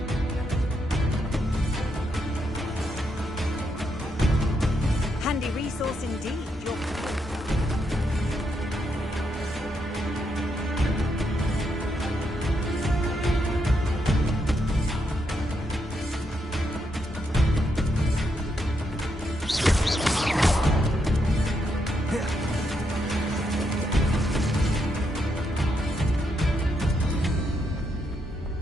Handy resource indeed.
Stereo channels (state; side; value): normal; both; correlation 0.80